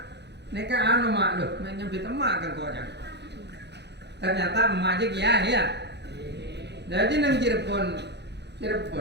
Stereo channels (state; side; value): late; left; 0.50 ms